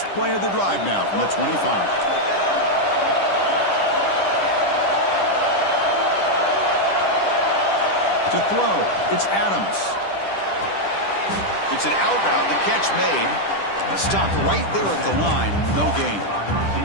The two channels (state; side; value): late; right; 10 ms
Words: play of the drive now from the 25. To throw, it's Adams. It's an out route, the catch made. Stopped right there at the line, no gain.